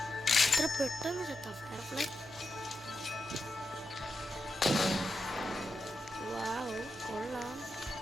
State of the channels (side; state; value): both; normal; correlation 0.87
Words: എത്ര പെട്ടെന്ന് ചത്ത ഫയർഫ്ലൈ. വാവ് കൊള്ളാം.